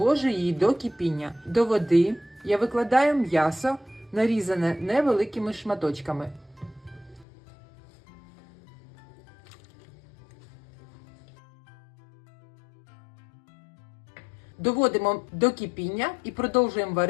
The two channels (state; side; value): drops out; right; at 7.2 s